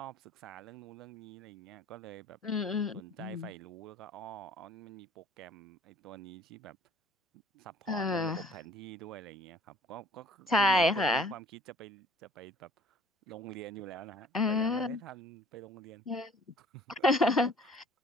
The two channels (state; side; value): normal; both; correlation 0.52